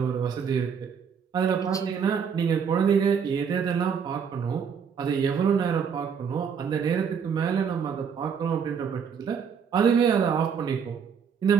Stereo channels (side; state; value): left; quieter; 6.9 dB